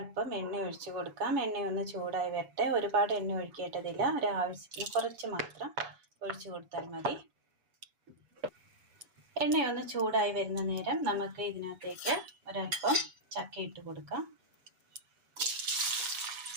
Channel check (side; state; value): left; late; 8.2 ms